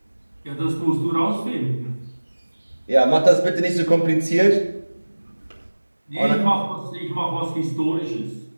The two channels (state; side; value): inverted; both; correlation -1.00